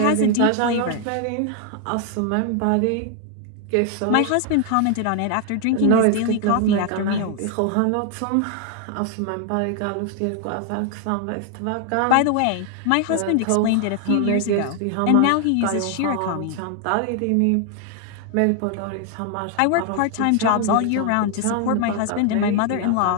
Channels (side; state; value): both; different; correlation 0.00